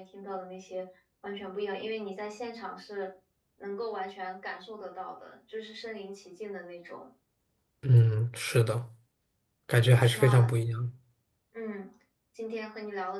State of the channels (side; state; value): both; identical; correlation 1.00